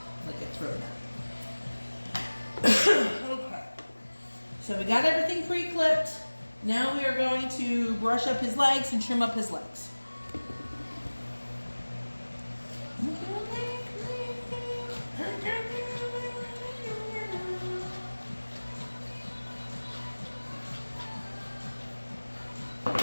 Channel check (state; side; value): inverted; both; correlation -1.00